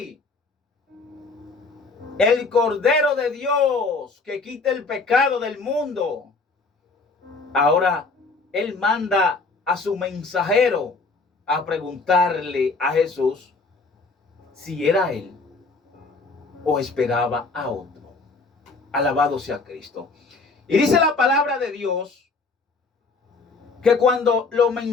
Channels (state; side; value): quieter; right; 3.9 dB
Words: el Cordero de Dios que quita el pecado del mundo. Ahora él manda a su mensajero a preguntarle a Jesús si era él o esperaba a otro. Alabado sea Cristo. Y dice la palabra de Dios que cuando los